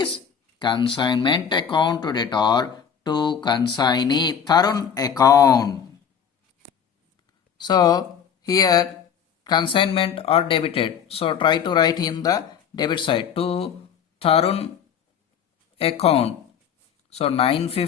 consignment account to debtor to consignee Tarun account. So here consignment are debited. So try to write in the debit side to Tarun account. So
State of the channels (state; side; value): quieter; right; 7.8 dB